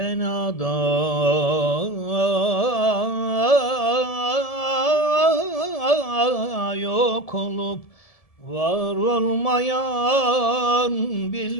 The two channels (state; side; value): late; right; 1.7 ms